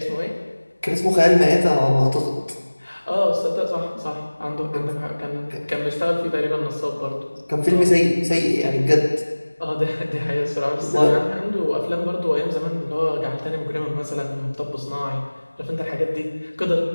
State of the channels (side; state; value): both; inverted; correlation -1.00